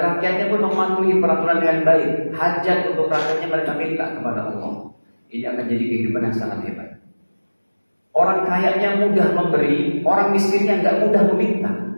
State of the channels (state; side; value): inverted; both; correlation -1.00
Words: pun mematuhi peraturan dengan baik, hajat untuk rakyatnya mereka minta kepada Allah, ini akan jadi kehidupan yang sangat hebat. Orang kayanya mudah memberi, orang miskinnya nggak mudah meminta.